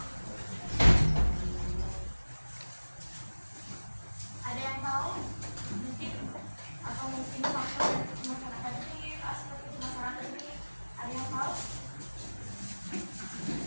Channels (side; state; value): both; inverted; correlation -1.00